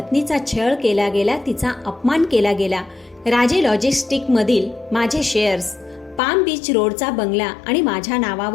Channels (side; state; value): right; drops out; at 6.2 s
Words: छळ केला गेला, तिचा अपमान केला गेला, राजे लॉजिस्टिकमधील माझे शेअर्स, पाम बीच रोडचा बंगला आणि माझ्या